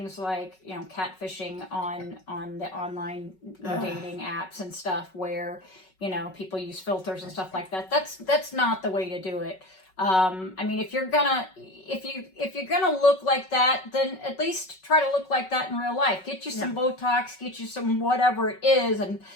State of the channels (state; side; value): late; right; 5.4 ms